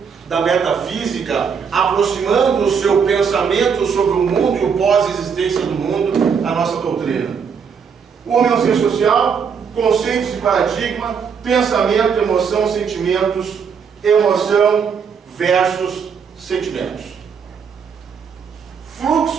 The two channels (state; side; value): quieter; left; 6.5 dB